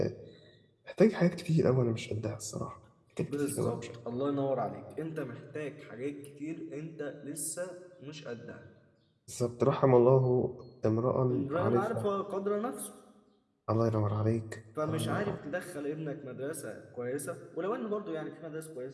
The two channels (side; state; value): both; identical; correlation 1.00